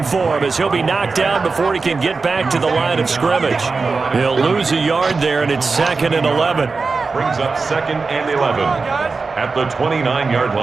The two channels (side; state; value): left; quieter; 4.3 dB